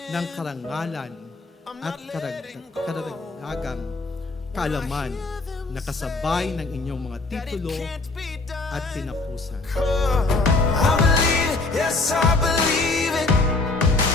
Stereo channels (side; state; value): right; quieter; 3.4 dB